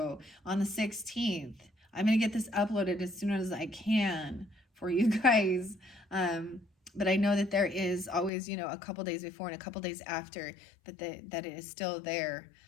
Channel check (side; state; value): right; drops out; at 8.3 s